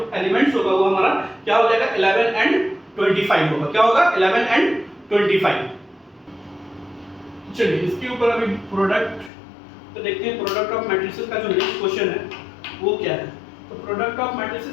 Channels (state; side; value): drops out; right; at 9.3 s